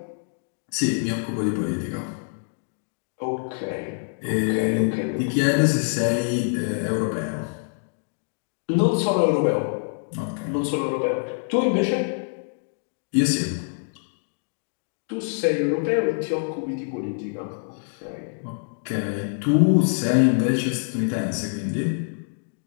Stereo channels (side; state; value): right; silent; digital silence